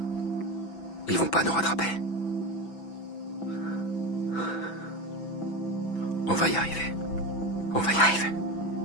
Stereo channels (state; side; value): late; right; 6.0 ms